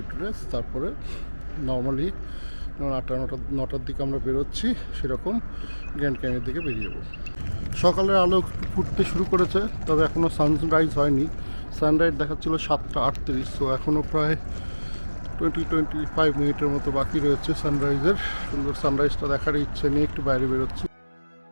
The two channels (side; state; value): both; inverted; correlation -1.00